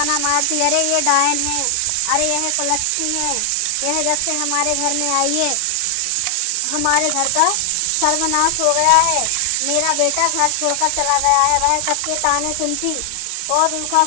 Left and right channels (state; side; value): different; both; correlation 0.00